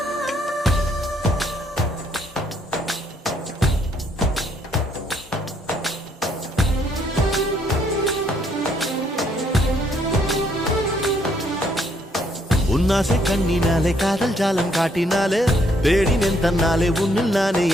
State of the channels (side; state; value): both; normal; correlation 0.69